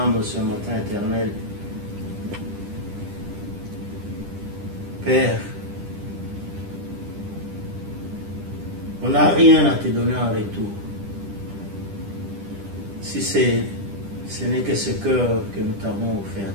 ce matin, Éternel. Père, on n'a rien à te donner en retour. Si ce n'est que ce cœur que nous t'avons offert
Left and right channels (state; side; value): late; left; 10 ms